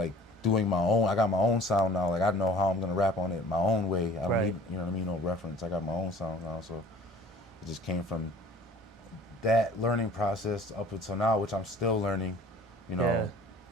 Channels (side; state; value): both; normal; correlation 0.49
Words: doing my own. I got my own sound now. Like I know how I'm gonna rap on it my own way. I don't need, you know what I mean, no reference. I got my own sound now, so it just came from that learning process up until now, which I'm still learning, you know.